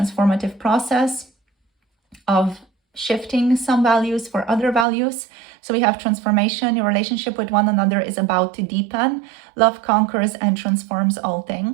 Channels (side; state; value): left; drops out; at 4.9 s